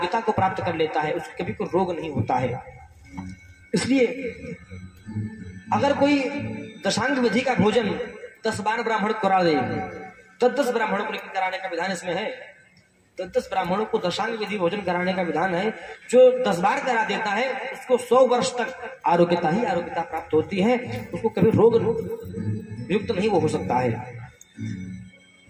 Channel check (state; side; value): identical; both; correlation 1.00